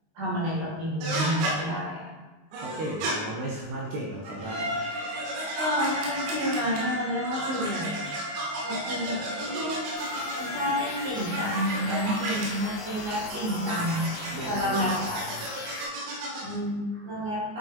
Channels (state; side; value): late; left; 19 ms